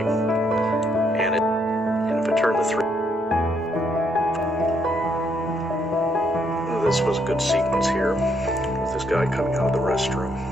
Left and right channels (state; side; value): normal; both; correlation 0.73